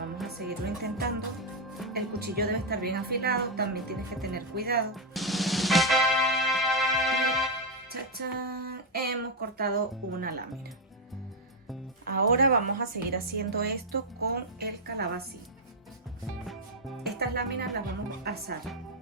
a seguirlo intentando. El cuchillo debe estar bien afilado, también tienes que tener cuidado. ¡Chachán! Hemos cortado una lámina. Ahora vamos a seguir haciendo esto con el calabacín. Estas láminas las vamos a asar,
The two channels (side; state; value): both; normal; correlation 0.01